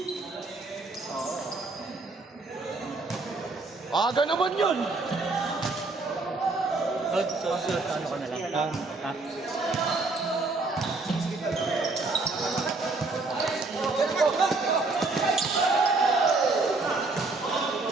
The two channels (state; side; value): quieter; left; 3.5 dB